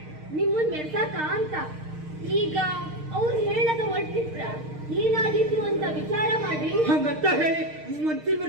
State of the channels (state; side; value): late; left; 6.5 ms